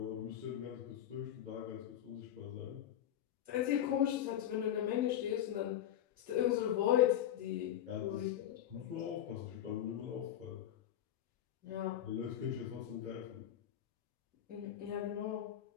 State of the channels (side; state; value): right; quieter; 11.2 dB